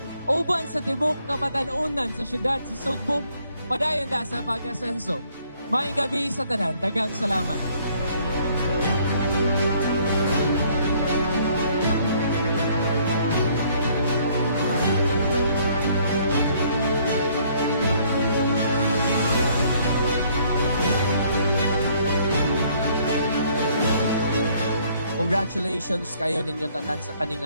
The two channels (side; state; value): both; inverted; correlation -0.63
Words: uban sa tibok kapatanunan sa syudad sa Sugbo, padayon da sa pag-asenso. Maayong gabi sa tanan, daghang salamat. Congratulations kayo ninyo tanan sa